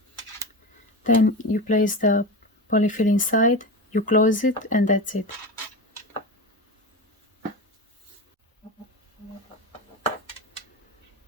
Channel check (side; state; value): both; normal; correlation 0.24